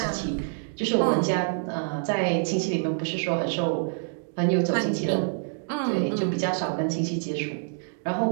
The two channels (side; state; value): left; silent; digital silence